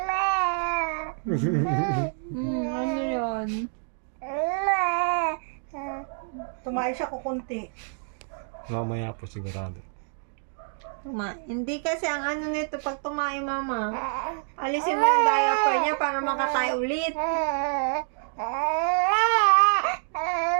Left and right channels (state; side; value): silent; left; digital silence